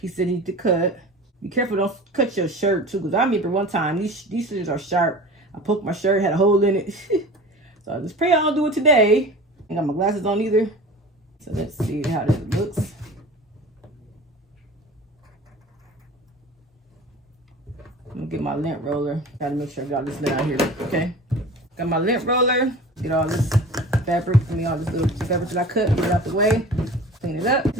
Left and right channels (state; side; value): normal; both; correlation 0.38